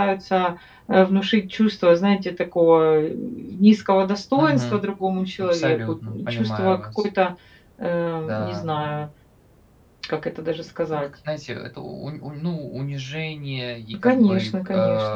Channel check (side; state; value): both; identical; correlation 1.00